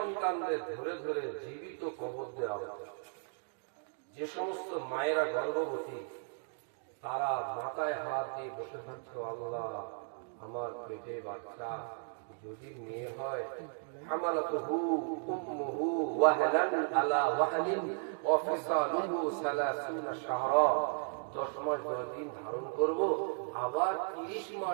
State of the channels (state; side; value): silent; left; 54 dB below the other